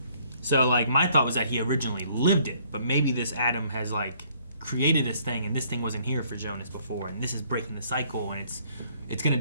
So, like, my thought was that he originally lived it, but maybe this Adam has, like, created this thing, and this thing wasn't here for Jonas before, and this is breaking the cycle, and it's going to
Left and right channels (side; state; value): both; inverted; correlation -0.63